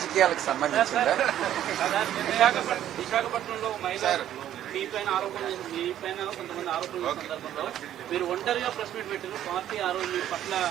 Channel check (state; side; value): quieter; left; 11.6 dB